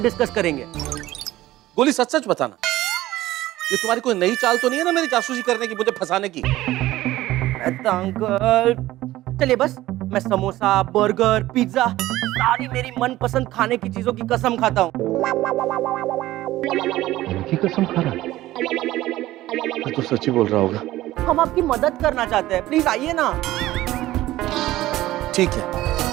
करेंगे। गोली सच सच बताना, ये तुम्हारी कोई नई चाल तो नहीं है ना मेरी जासूसी करने की, मुझे फंसाने की? अंकल चलिए, बस मैं समोसा, बर्गर, पिज्जा, सारी मेरी मनपसंद खाने की चीजों की कसम खाता हूँ। कसम खा रहा है? मैं तो सच ही बोल रहा होगा। हम आपकी मदद करना चाहते हैं, प्लीज आइए ना। ठीक है।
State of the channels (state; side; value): quieter; left; 16.0 dB